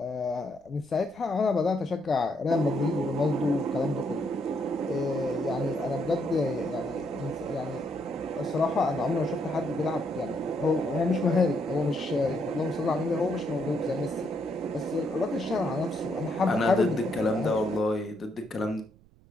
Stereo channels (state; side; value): noise; right; rumble, 28 dB below the sound